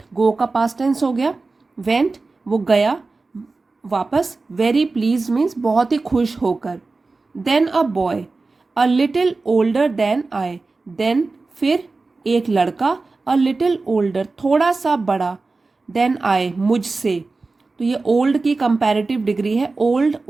गो का पास्ट टेंस हो गया, वेंट, वो गया वापस, वेरी प्लीज मीन्स बहुत ही खुश होकर। Then a boy a little older than I, then फिर एक लड़का, अ लिटिल ओल्डर थोड़ा सा बड़ा, देन आई मुझसे, तो ये ओल्ड की कंपैरेटिव डिग्री है, ओल्ड,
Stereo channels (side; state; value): left; quieter; 3.7 dB